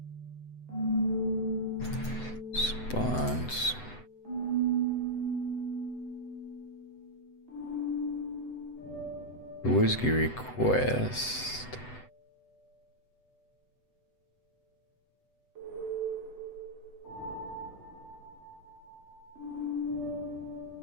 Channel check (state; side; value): late; right; 8.0 ms